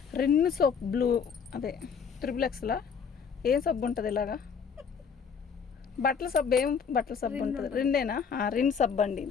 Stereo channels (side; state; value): right; quieter; 6.5 dB